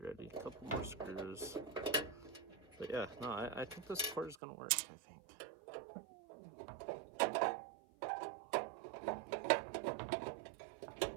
A couple more screws. But yeah, no, I think this cord is gonna work, I think.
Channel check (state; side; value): drops out; left; at 4.4 s